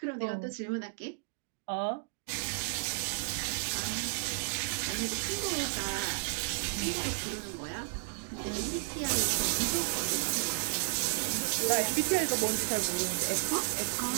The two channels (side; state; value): left; silent; digital silence